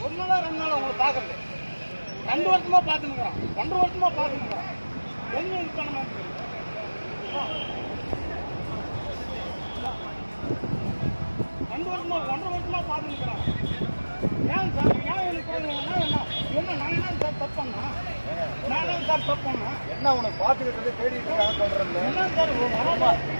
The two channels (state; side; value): inverted; both; correlation -1.00